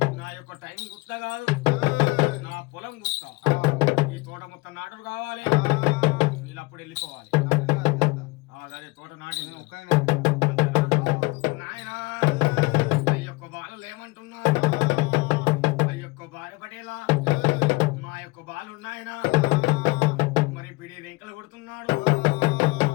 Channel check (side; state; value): right; quieter; 24.4 dB